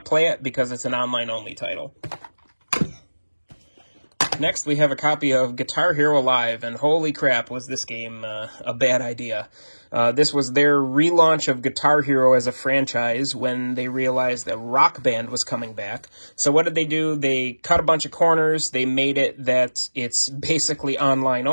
play it because it's an online-only title. Next, we have a copy of Guitar Hero Live, and holy crap, was this game a bad idea. This was their relaunch of Guitar Hero as a franchise when they realized that Rock Band was coming back. So what did they do? They cut a bunch of corners. They made it that it's basically online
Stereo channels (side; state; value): both; inverted; correlation -1.00